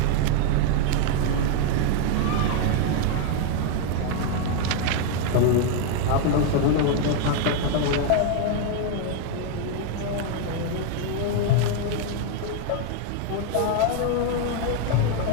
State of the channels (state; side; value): different; both; correlation 0.01